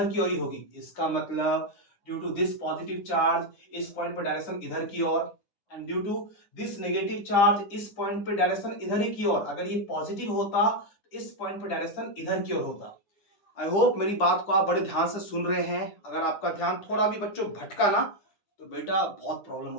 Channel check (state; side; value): late; right; 9.9 ms